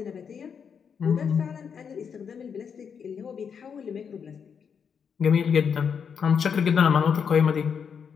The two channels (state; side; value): quieter; right; 6.8 dB